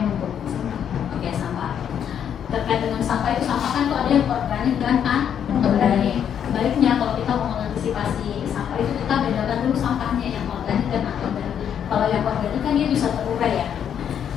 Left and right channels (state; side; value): quieter; right; 8.8 dB